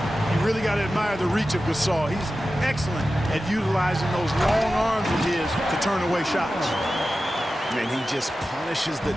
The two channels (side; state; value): both; normal; correlation 0.93